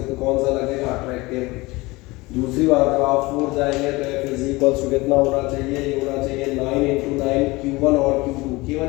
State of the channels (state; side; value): quieter; right; 22.2 dB